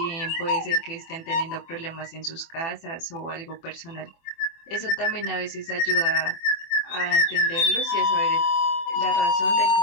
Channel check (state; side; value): late; right; 24 ms